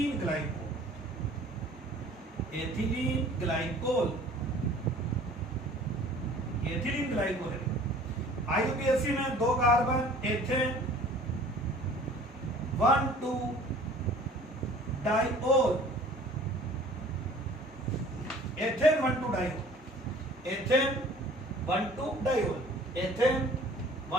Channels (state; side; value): normal; both; correlation 0.50